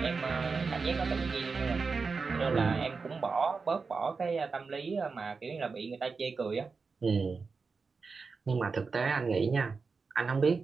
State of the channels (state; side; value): quieter; left; 4.7 dB